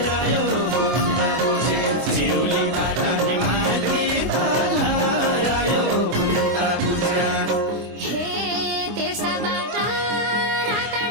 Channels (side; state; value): left; late; 24 ms